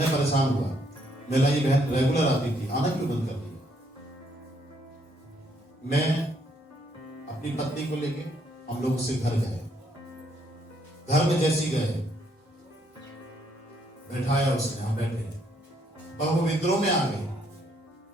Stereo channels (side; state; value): both; normal; correlation 0.71